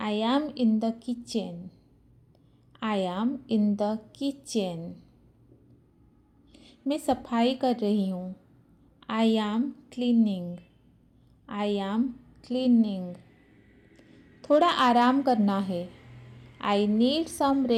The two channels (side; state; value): both; identical; correlation 1.00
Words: am in the kitchen. I am in the kitchen. मैं सफाई कर रही हूँ। I am cleaning. I am cleaning. थोड़ा आराम करना है। I need some